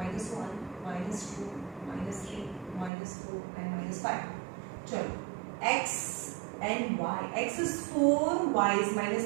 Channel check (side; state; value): left; drops out; at 2.9 s